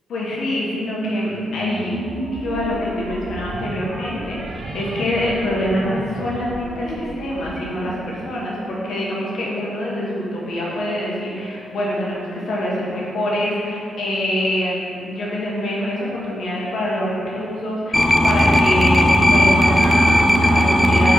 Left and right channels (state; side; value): normal; both; correlation 0.86